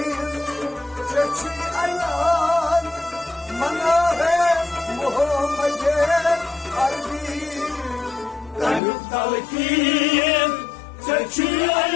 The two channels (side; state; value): right; drops out; at 8.8 s